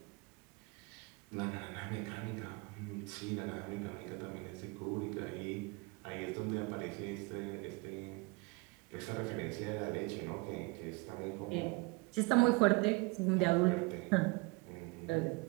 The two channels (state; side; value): quieter; left; 27.4 dB